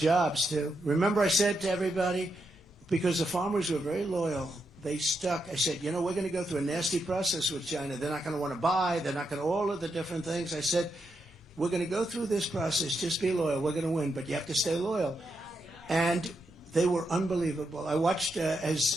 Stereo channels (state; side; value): normal; both; correlation 0.83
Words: too. Remember I said to everybody, because the farmers were very loyal, they stuck. I said, we're going to go through a nasty process with China. They're not going to want to buy. They're not going to, all of the different things. I said, we're going to go through this process. Just be loyal. We're going to win, but you have to stay loyal. And they were unbelievable. I watched,